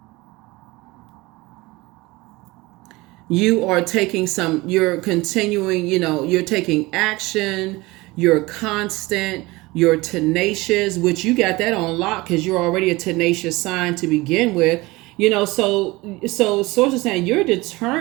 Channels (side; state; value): left; quieter; 21.6 dB